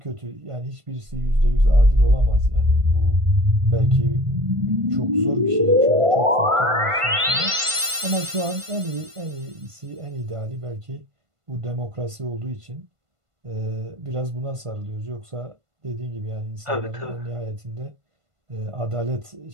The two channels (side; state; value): left; late; 1.5 ms